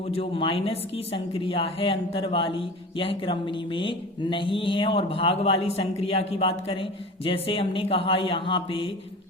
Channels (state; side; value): normal; both; correlation 0.35